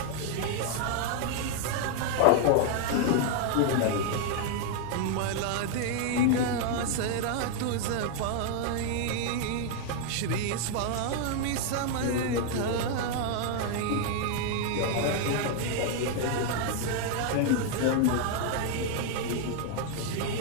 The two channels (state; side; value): different; both; correlation 0.00